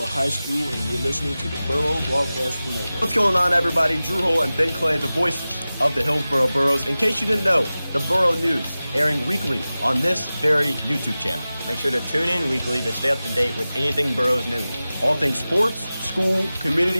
High School, and you're listening to the Burro Broadcast Network. What's going on, everybody? Drew Hull and Ben Clay, the voices of the Hillsboro Burros. In case you didn't know, the Burro News airing weekly on this very YouTube channel. Make sure to tune in weekly to stay up to date with anything Burros news. All things sports, school,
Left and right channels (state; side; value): inverted; both; correlation -0.96